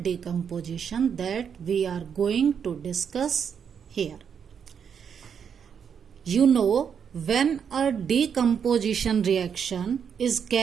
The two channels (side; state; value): left; quieter; 7.4 dB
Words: that we are going to discuss here. You know, when a decomposition reaction is